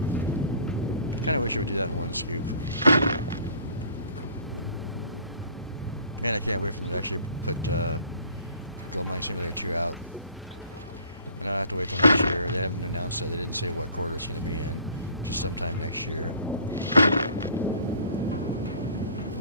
Kind of wish you would do that in one scoop. Man, I can't wait for them to actually put Gold Mining Simulator 2 out. And I don't have to wait till next year. They haven't announced that. They didn't say what quarter it's going to be in. Just sometime next year.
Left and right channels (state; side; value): inverted; both; correlation -0.52